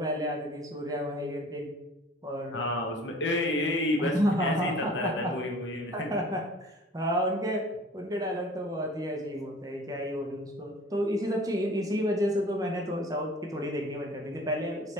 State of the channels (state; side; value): normal; both; correlation 0.46